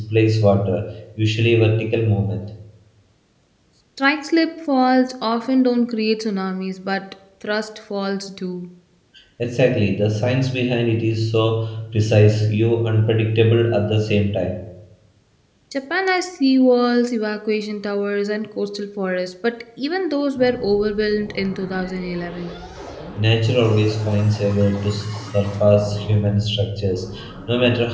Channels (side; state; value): both; identical; correlation 1.00